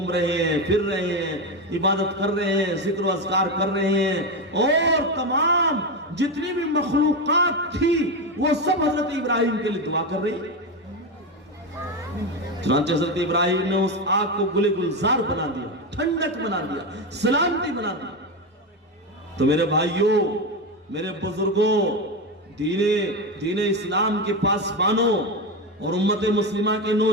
رہے ہیں، پھر رہے ہیں، عبادت کر رہے ہیں، ذکر و اذکار کر رہے ہیں، اور تمام جتنی بھی مخلوقات تھی وہ سب حضرت ابراہیم کے لیے دعا کر رہی ہے۔ چنانچہ حضرت ابراہیم نے اس آگ کو گل گلزار بنا دیا، ٹھنڈک بنا دیا، سلامتی بنا دیا۔ تو میرے بھائیوں، میرے بزرگوں، دین اسلام کے پاسبانوں اور امت مسلمہ کے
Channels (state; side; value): normal; both; correlation 0.14